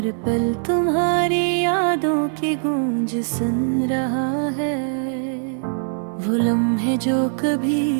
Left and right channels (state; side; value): silent; left; digital silence